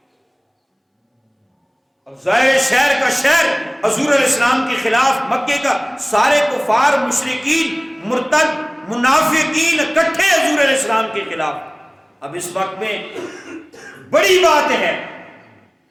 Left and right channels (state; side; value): identical; both; correlation 1.00